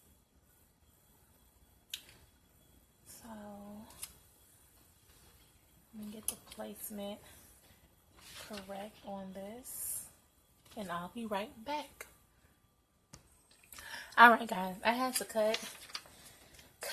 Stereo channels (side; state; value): both; identical; correlation 1.00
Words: So let me get the placement correct on this, and I'll be right back. Alright guys, I had to cut